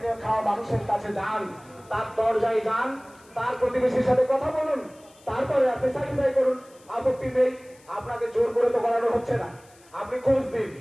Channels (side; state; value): left; noise; hiss, 28 dB below the sound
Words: খাওয়া মানুষের কাছে যান, তার দরজায় যান, তার প্রতিবেশীর সাথে কথা বলুন, তারপরে আপনি সার্টিফাই করুন, আপত্তি নেই। আপনাকে জোর করে তো করানো হচ্ছে না, আপনি খোঁজ দিন।